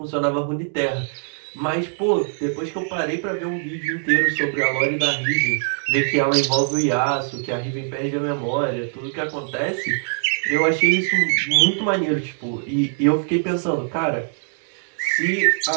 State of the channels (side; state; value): left; silent; digital silence